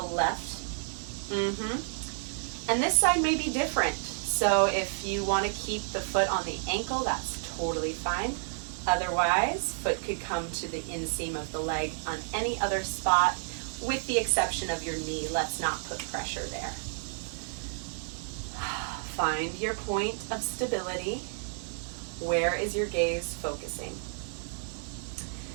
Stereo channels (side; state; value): left; silent; digital silence